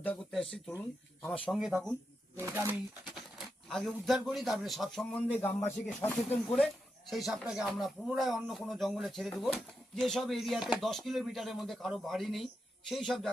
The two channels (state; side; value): normal; both; correlation 0.86